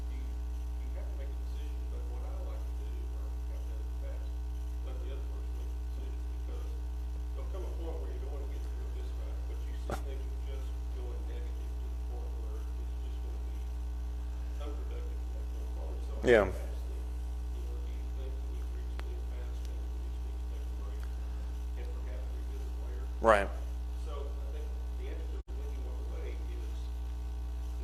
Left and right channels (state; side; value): identical; both; correlation 1.00